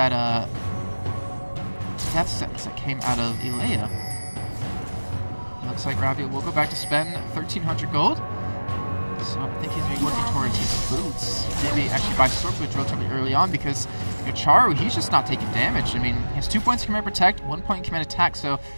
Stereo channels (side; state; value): both; inverted; correlation -1.00